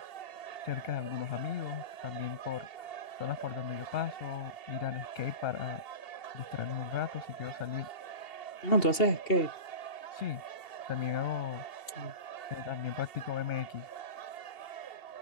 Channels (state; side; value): late; right; 2.8 ms